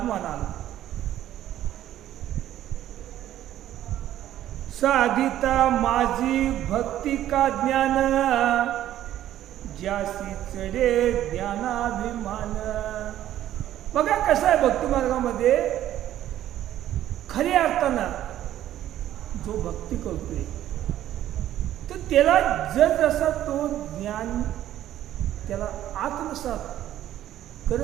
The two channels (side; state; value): left; quieter; 12.4 dB